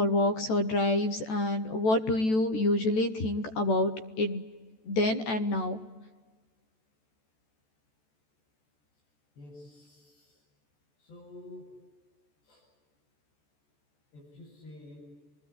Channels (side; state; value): right; late; 14 ms